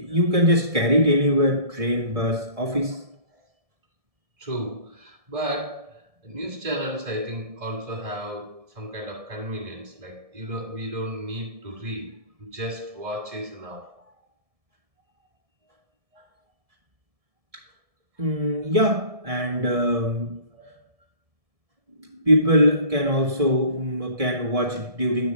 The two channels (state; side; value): late; left; 1.7 ms